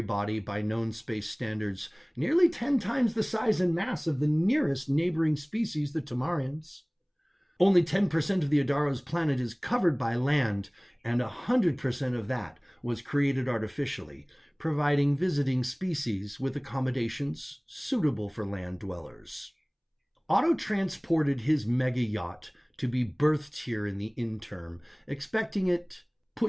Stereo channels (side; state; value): both; identical; correlation 1.00